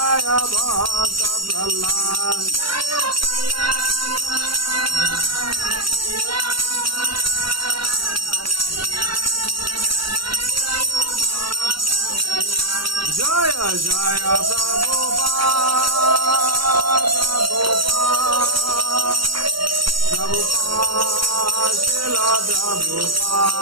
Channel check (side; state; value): left; late; 0.74 ms